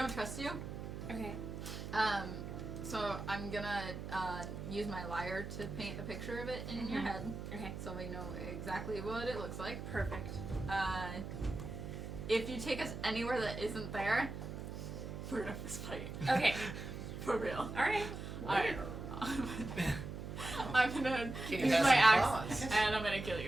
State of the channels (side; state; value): right; noise; hum, 7 dB below the sound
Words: trust you. Okay. So I'm gonna use my lyre to paint a picture of it in your head, Okay. so we know exactly what it looks like. Perfect. If you take us anywhere that isn't there, we're gonna fist fight. Okay. For real. Alright. Alright. I'm gonna Can you use have my some axe claws? and I'm gonna kill